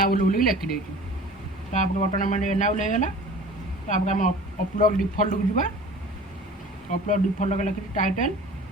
बोल लिखिदे बर्तमान मैंने एनाबुल होगा तापर आम अपलोड डिफल्ट को जीवा अपलोड डिफल्ट लिखी टाइटल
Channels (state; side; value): normal; both; correlation 0.43